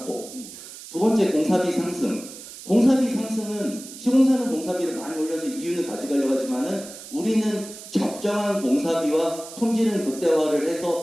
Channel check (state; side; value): noise; right; hiss, 14 dB below the sound